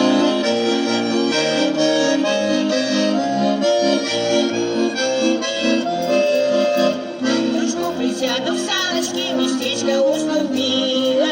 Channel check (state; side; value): identical; both; correlation 1.00